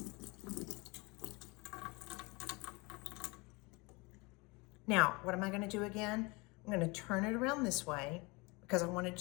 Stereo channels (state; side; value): quieter; right; 26.5 dB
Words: Now, what am I going to do again? I'm going to turn it around this way, because I want it